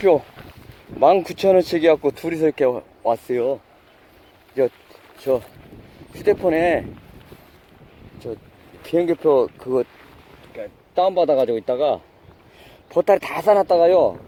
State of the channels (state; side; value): identical; both; correlation 1.00